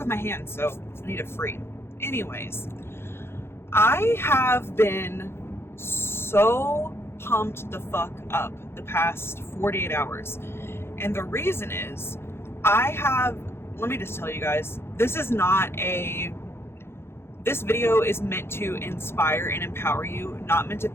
my hands, so I need it free. Anyways, I have been so pumped the fuck up the past 48 hours, and the reason is let me just tell you guys, this video is meant to inspire and empower you, not meant to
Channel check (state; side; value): late; right; 0.12 ms